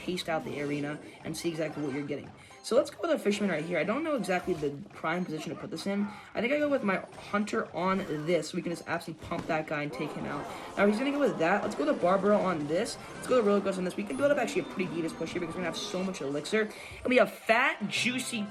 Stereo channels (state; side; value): identical; both; correlation 1.00